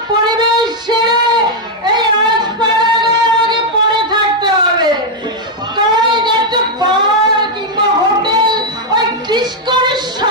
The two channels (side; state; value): both; normal; correlation 0.00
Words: পরিবেশ ছেড়ে এই আগে পড়ে থাকতে হবে। তাই একটা বার কিংবা হোটেল ওই ডিস্কোর